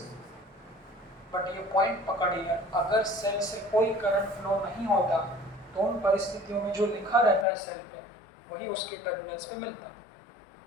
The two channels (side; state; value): right; drops out; at 7.5 s